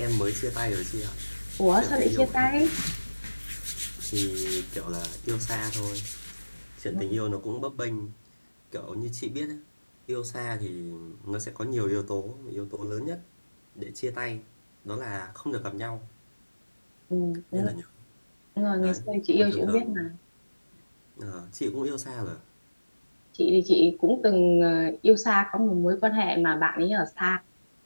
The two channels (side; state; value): both; inverted; correlation -1.00